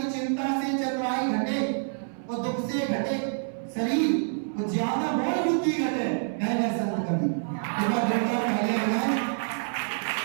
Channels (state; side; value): silent; left; 60 dB below the other